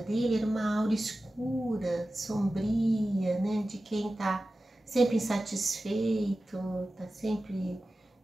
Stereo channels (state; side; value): normal; both; correlation 0.95